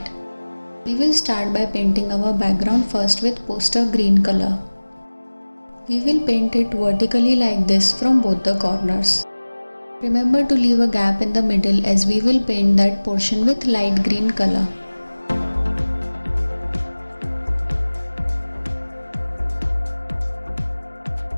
We will start by painting our background first with poster green color. We will paint it vertically like this from both the corners. Remember to leave a gap in the middle as we will paint that portion with light green color.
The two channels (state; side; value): inverted; both; correlation -1.00